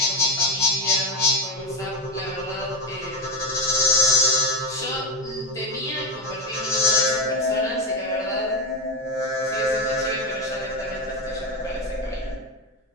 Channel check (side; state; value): both; normal; correlation 0.11